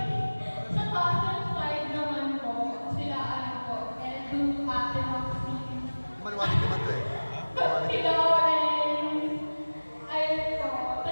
cousin side naman po, sila ano po, Edu, Ate Maxine, Manuwalig naman to eh. si Lawrence, ayun po.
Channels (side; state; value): both; inverted; correlation -1.00